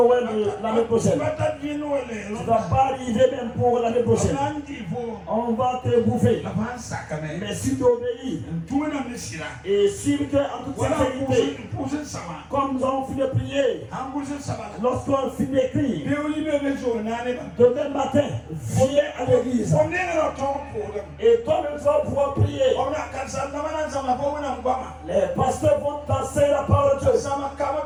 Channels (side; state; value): both; identical; correlation 1.00